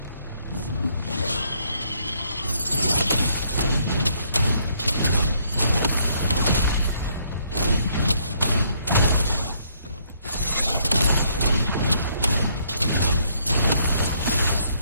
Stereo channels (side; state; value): both; inverted; correlation -0.69